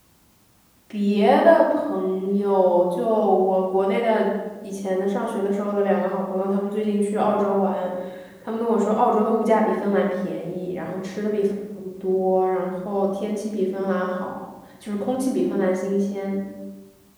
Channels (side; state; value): both; identical; correlation 1.00